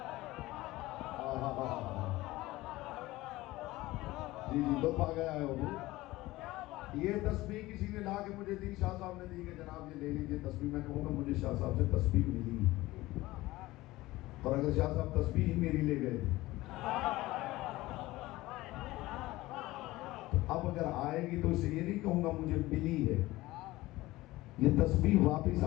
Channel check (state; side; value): quieter; right; 18.5 dB